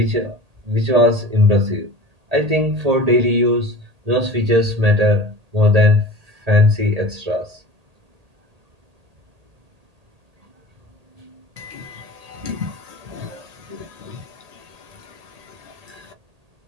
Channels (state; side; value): late; left; 1.8 ms